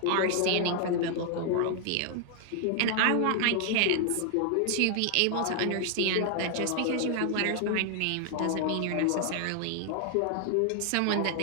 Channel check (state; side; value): different; both; correlation 0.00